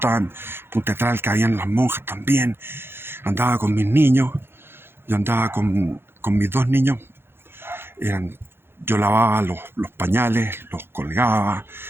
en Punta Tralca, habían las monjas también. Andaba con mis niños, yo andaba con mis dos niños. Yo lavaba los pañales, los colgaba,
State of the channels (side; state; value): left; late; 0.11 ms